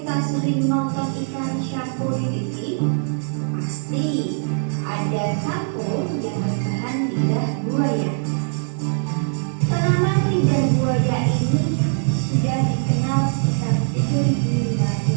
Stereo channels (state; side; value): silent; left; 64 dB below the other